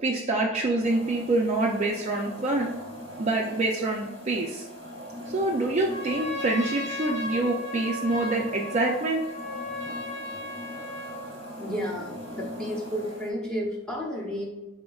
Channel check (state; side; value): normal; both; correlation 0.42